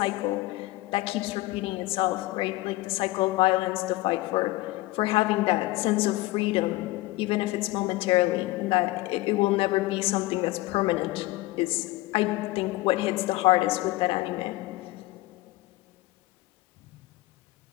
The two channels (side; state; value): right; quieter; 19.2 dB